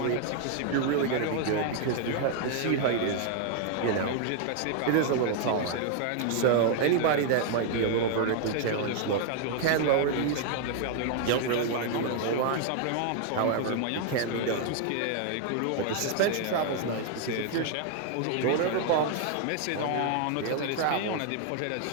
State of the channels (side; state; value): both; different; correlation 0.00